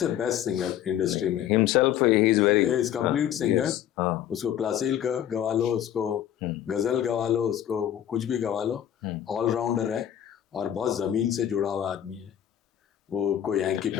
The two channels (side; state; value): right; quieter; 10.8 dB